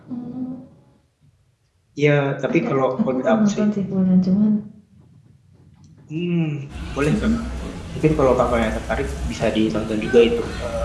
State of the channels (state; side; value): identical; both; correlation 1.00